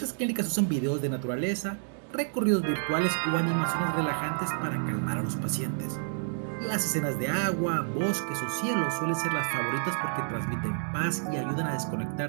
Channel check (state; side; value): silent; left; digital silence